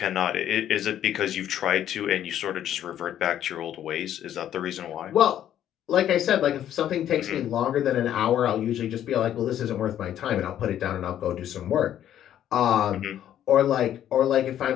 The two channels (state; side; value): quieter; right; 11.0 dB